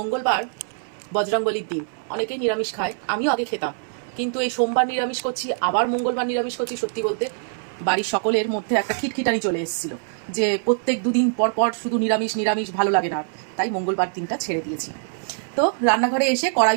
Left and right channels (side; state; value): left; silent; 59 dB below the other